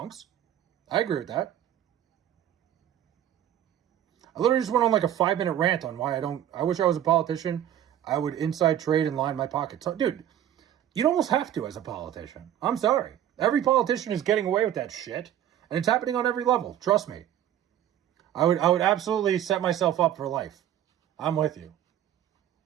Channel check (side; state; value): left; quieter; 11.1 dB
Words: I agree with that. I literally just went on like a 5-minute rant on why I wish I was a politician. I would inside trade and line my pockets. Dude, you'd almost have to as a politician. I'm sorry. Every politician is getting away with that shit. And it's happening on every level. Trust me. I would absolutely set myself up for life. I'm with you.